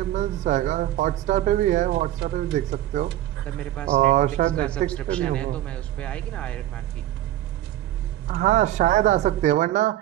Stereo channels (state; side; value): quieter; left; 13.8 dB